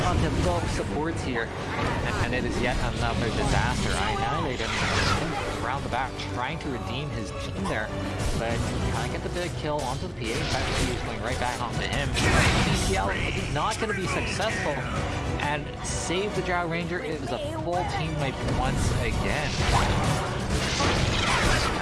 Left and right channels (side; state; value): both; identical; correlation 1.00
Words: onto both supports here. And it is yet another disaster. I annihilate him around the back, trying to redeem his team there. But can't get the big kill onto the PA. In fact, he's going right back onto him. CCL is not going to be successful. And save the Drow Ranger. It was a full team wipe once again.